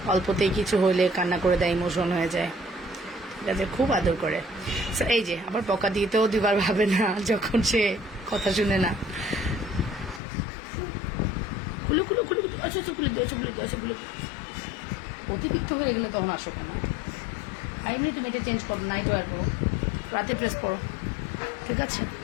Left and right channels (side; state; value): right; drops out; at 10.2 s